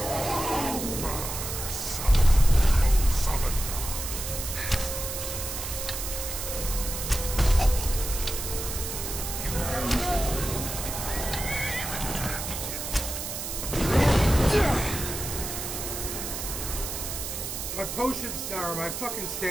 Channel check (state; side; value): noise; right; hiss, 5 dB below the sound